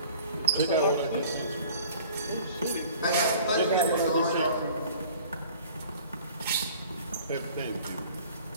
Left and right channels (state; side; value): inverted; both; correlation -0.49